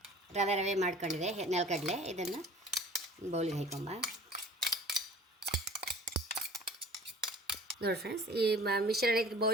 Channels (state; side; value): normal; both; correlation 0.46